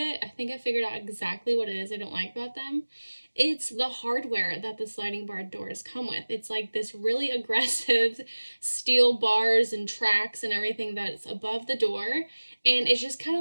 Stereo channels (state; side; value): inverted; both; correlation -1.00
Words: I think I figured out exactly what it is I don't like about them. It's the hardware that the sliding barn doors come with. It's like this really aggressive steel bars and tracks and everything that's above the door. And it's just kind